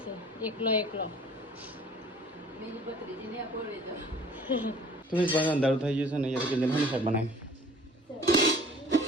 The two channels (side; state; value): both; normal; correlation 0.50